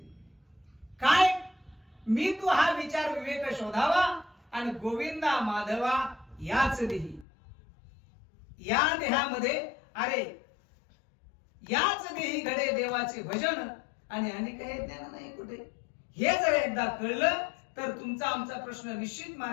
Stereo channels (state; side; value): drops out; right; at 7.2 s